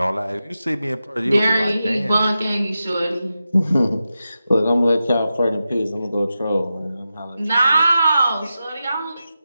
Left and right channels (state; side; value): inverted; both; correlation -0.91